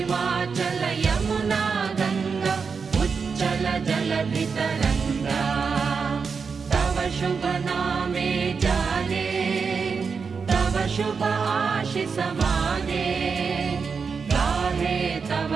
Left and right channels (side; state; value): left; quieter; 5.5 dB